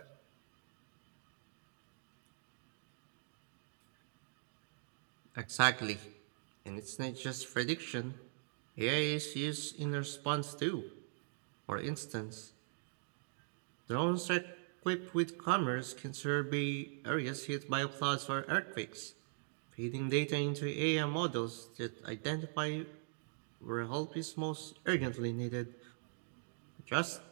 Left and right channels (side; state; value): left; silent; digital silence